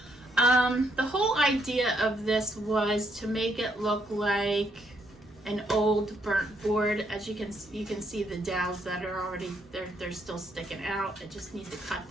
The whole idea of this was to make it look like an old burnt board. As you can see the dowels that are already they're still sticking out. I just need to cut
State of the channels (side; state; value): both; normal; correlation 0.73